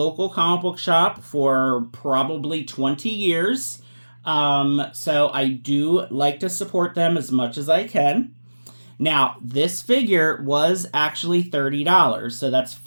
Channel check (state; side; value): inverted; both; correlation -1.00